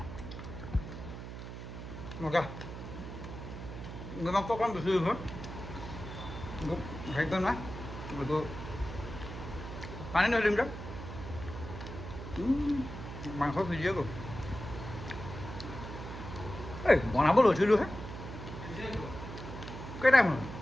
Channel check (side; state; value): right; noise; hum, 9 dB below the sound